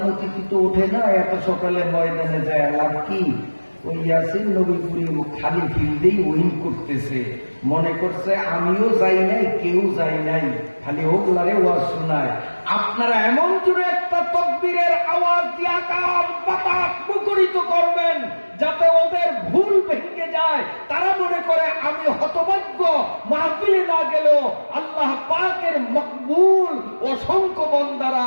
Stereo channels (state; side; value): inverted; both; correlation -1.00